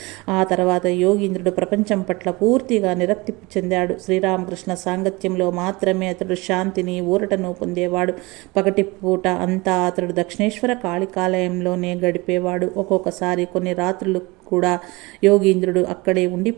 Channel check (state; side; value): quieter; left; 23.9 dB